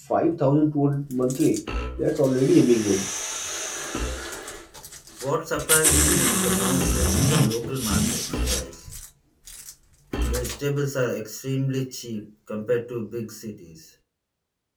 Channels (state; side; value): identical; both; correlation 1.00